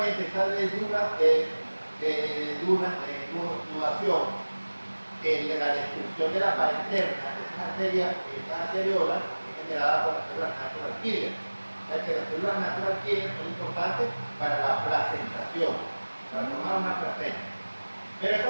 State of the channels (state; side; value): inverted; both; correlation -1.00